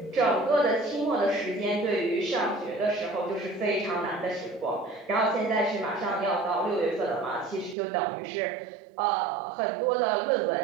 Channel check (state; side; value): drops out; left; at 7.8 s